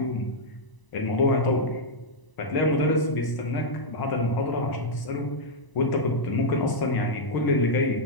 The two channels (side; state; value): right; late; 1.0 ms